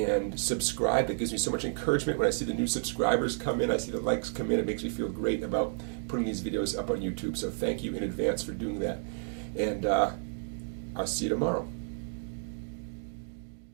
subscribe. It gives me so much encouragement when I see the new subscribers come in. I see the likes come in. It makes me feel great about putting these videos up on YouTube. So thank you in advance for doing that. And I'll see you tomorrow.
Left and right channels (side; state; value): left; silent; 57 dB below the other